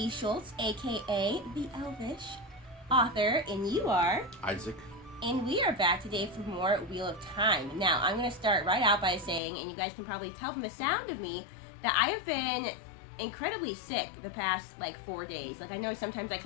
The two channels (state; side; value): drops out; right; at 9.4 s